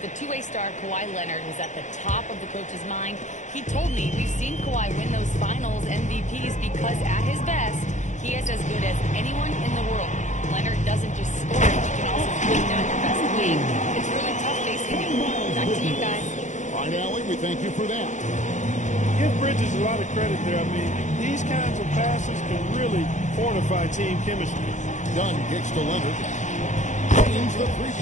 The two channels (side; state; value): right; late; 0.35 ms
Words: The two-way star Kawhi Leonard was at the top of the coach's mind. He told me we've seen Kawhi win those finals MVPs because at his best, he is as good as anyone in the world. Leonard doesn't just score, he can also bring down your best wing. It's really tough facing him. Back to you guys. All right, Allie, we thank you for that. Give Bridges a lot of credit there. I mean, these kinds of passes can really fortify team chemistry. Dunn kicks to Leonard. Drains the